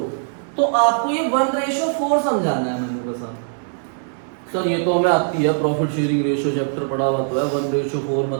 तो आपको ये 1:4 समझाना है मैंने बस। सर ये तो हमें आती है, प्रॉफिट शेयरिंग रेशियो चैप्टर पढ़ा हुआ तो है। 1:4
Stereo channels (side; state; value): left; silent; digital silence